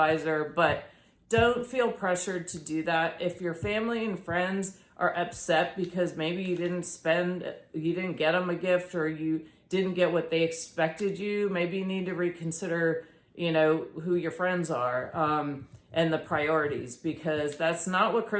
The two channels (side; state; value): both; identical; correlation 1.00